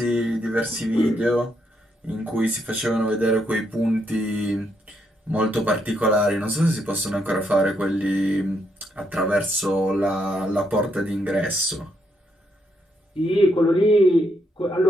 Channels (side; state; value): both; normal; correlation 0.77